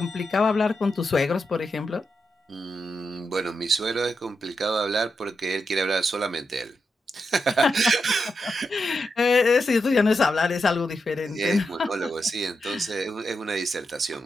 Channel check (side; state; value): both; normal; correlation 0.86